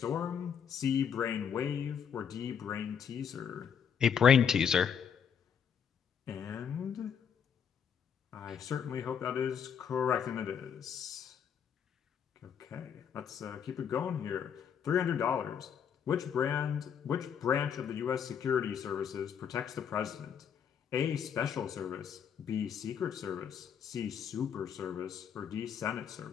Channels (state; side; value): quieter; right; 7.7 dB